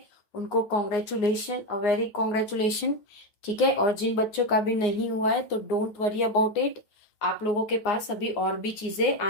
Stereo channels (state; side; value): late; right; 9.7 ms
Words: उनको कॉन्ग्रेचुलेशन, अ वेरी कॉन्ग्रेचुलेशन, ठीक है। और जिन बच्चों का भी नहीं हुआ है तो डोंट वरी अबाउट इट, आप लोगों के पास अभी और भी चीजें